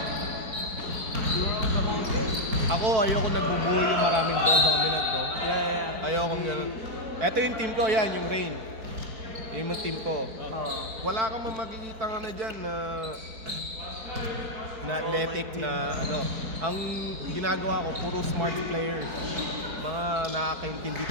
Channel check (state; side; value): late; left; 4.6 ms